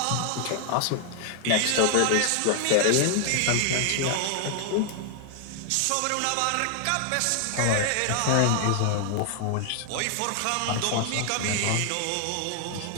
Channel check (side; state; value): both; different; correlation 0.00